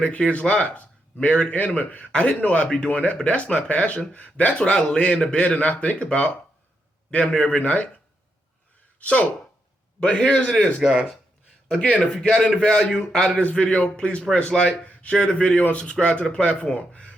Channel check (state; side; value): normal; both; correlation 0.82